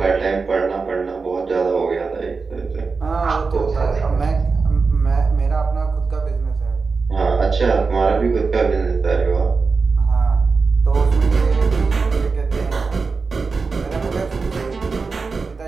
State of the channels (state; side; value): quieter; left; 4.5 dB